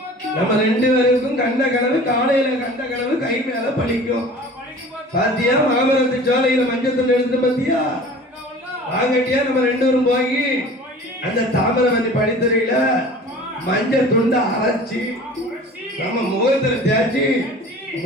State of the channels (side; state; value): both; normal; correlation 0.43